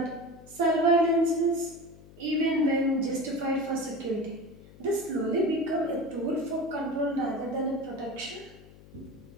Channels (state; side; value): noise; left; hum, 21 dB below the sound